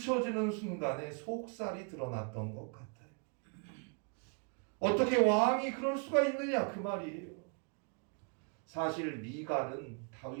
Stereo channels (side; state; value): left; quieter; 38.1 dB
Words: 순간에 속살이 드러났던 것 같아요. 어떻게 왕이 그럴 수가 있느냐 그 말이에요. 사실 미갈은